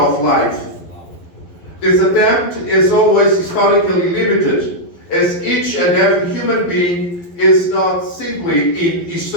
life. This attempt is always historically limited, as each and every human being is not simply in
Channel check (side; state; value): right; late; 11 ms